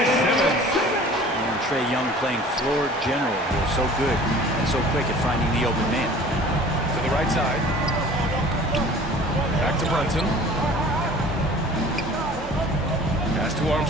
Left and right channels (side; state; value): both; normal; correlation 0.46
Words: Simmons. And Trae Young playing floor general here. So good and so quick at finding the open man. To the right side. Back to Brunson. Pass to